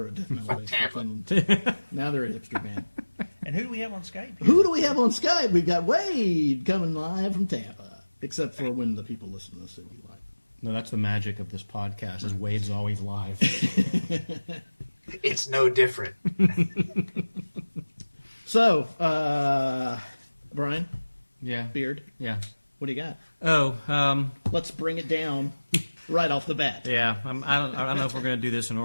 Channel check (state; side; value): inverted; both; correlation -1.00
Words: a death metal band. Tampa. Now they're a hipster band. And who do we have on Skype? Who do we have on Skype? We've got Wade coming live from Tampa. Except for when the people listen to this, it'll be live. No, that's the magic of this podcast, is Wade's always live. It's no different. So, Brian, Yeah. Beard, Yeah. what do you got? Oh, Let's bring it down right off the bat. yeah. I don't know if we're going to do this in